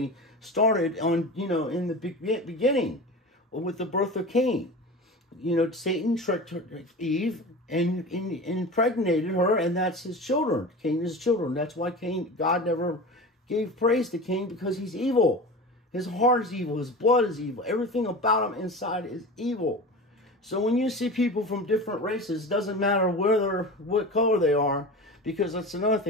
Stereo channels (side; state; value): both; normal; correlation 0.31